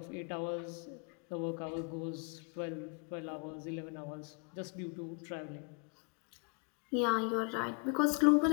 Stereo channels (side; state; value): right; quieter; 35.3 dB